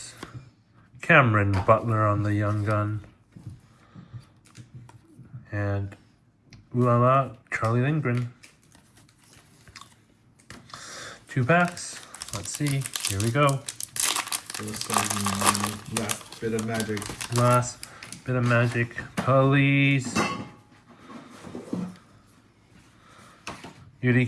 Cameron Butler on the young gun. And ooh la la, Charlie Lindgren. 2 packs. Let's see. Here we go. Last bit of magic. Last bit of magic. Please. Beauty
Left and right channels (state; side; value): identical; both; correlation 1.00